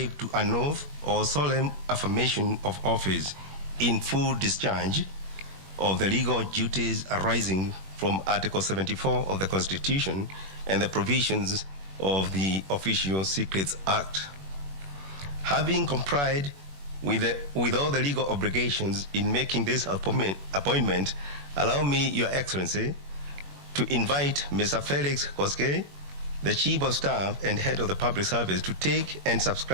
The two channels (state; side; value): late; left; 21 ms